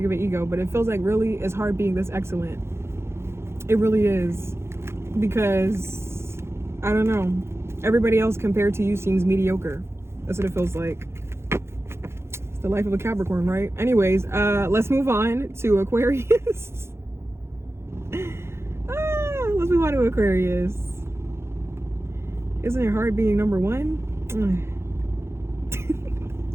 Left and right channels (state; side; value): late; left; 0.12 ms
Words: of an ego, but it feels like really it's hard being this excellent. It really is. Because, I don't know. Everybody else compared to you seems mediocre. That's what it feels like. It's the life of a Capricorn, right? Anyways, let's move on to Aquarius. Let's move on to Aquarius. Isn't it hard being number one?